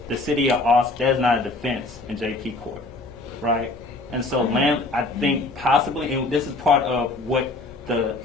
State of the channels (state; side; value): quieter; right; 3.1 dB